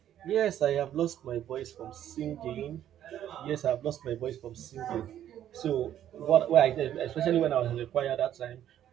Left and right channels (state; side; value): quieter; left; 11.1 dB